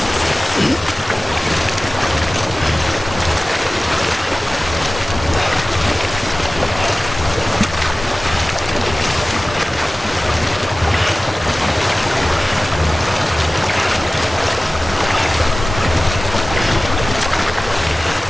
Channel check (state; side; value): normal; both; correlation 0.97